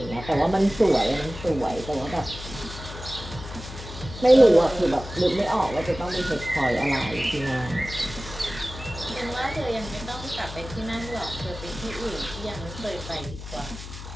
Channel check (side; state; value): left; noise; hum, 11 dB below the sound